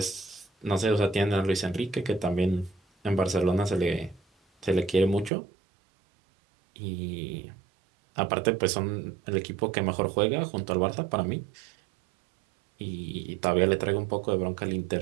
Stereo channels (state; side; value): drops out; left; at 5.3 s